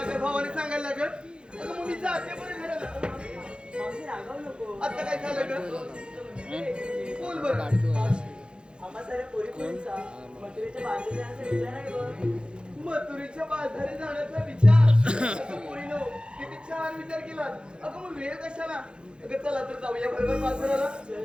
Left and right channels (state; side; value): late; left; 0.052 ms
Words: काय भावाने सांगायला लागत अगं मग मी जाते बरं घराला मावशी रागावू नको. आता काय झालं का बोल बरं आम्हा साऱ्या पोरी-पोरींचा मथुरेच्या बाजूला जाण्याचा विचार आहे बघ. मथुरेच्या बाजारी जाण्याचा विचार अगं पोरीनो किती छान विचार केला अगं मग वेळ कशाला अगं चला तर जाऊया बरोबर बाजाराला चल